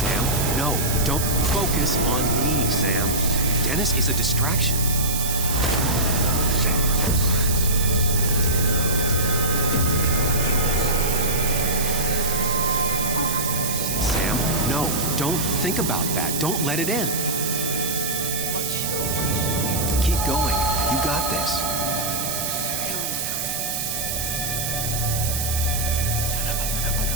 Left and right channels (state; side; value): noise; right; hiss, 2 dB below the sound